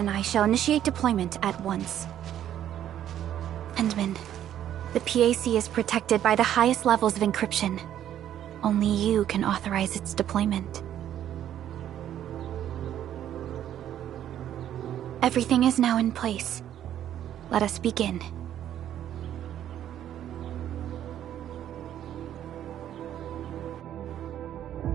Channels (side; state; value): left; quieter; 11.0 dB